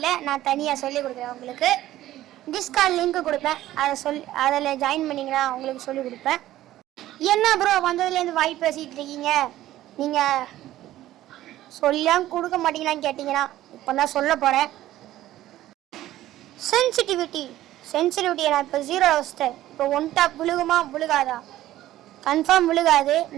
நான் தனியாக சொல்லி கொடுக்குறேன் உங்களுக்கு. டிஸ்கார்ட் லிங்க் கொடுப்பேன், அதில் ஜாயின் பண்ணிங்கன்னா உங்களுக்கு சொல்லி கொடுப்பேன். என்ன ப்ரோ வந்ததுலேருந்து வாய் பேசிகிட்டு இருக்கீங்க, நீங்கள் சொல்லியும் கொடுக்க மாட்டீங்களான்னு கேட்டிங்கன்னா இப்போ தான் சொல்ல போகிறேன். சென்சிட்டிவிட்டியை நான் இப்போ 0 வச்சிட்டேன். இப்போ ஒன் டாப் விழுகுமா விழுகாதா? கன்ஃபார்ம் விழுகாது.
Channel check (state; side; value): quieter; left; 14.3 dB